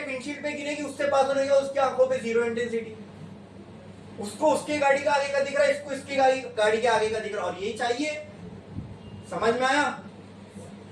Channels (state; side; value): identical; both; correlation 1.00